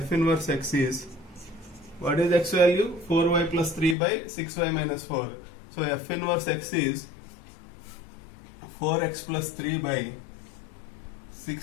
inverse x is, what is x value? 4y plus 3 by 6y minus 4. So f inverse x is 4x plus 3 by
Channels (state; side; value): drops out; right; at 4.0 s